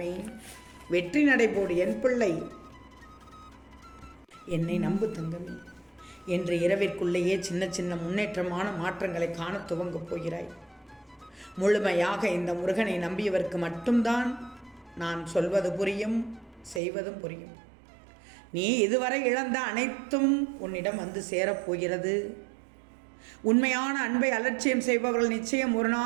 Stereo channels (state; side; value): drops out; left; at 16.8 s